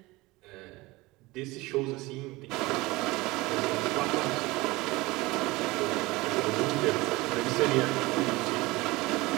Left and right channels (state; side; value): quieter; left; 21.4 dB